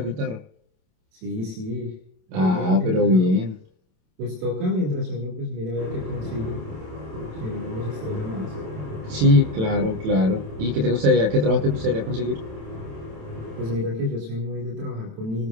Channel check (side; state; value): left; late; 27 ms